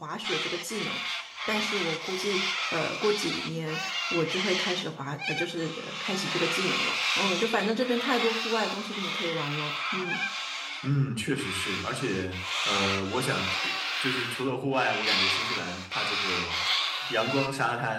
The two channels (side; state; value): both; identical; correlation 1.00